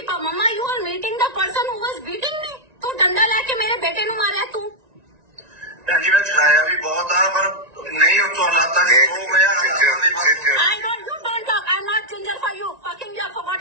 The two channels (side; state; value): left; late; 1.9 ms